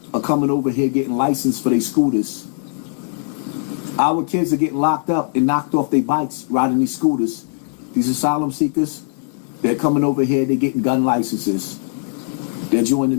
are coming over here getting licensed for their scooters. Our kids are getting locked up and knocked off their bikes riding these scooters. These asylum seekers, they're coming over here, they're getting gun licenses. They're joining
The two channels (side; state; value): right; silent; digital silence